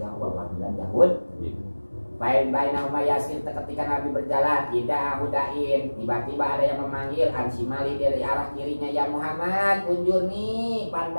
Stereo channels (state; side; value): inverted; both; correlation -1.00